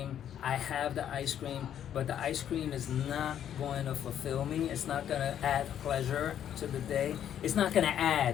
I have the ice cream, but the ice cream is not going to fulfill me. It's not going to add pleasure to the day. It's not going to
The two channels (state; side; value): quieter; right; 10.0 dB